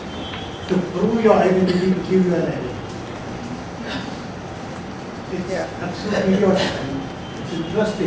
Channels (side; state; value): both; identical; correlation 1.00